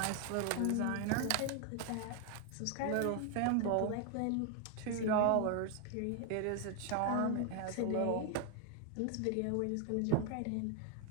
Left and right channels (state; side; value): different; both; correlation 0.00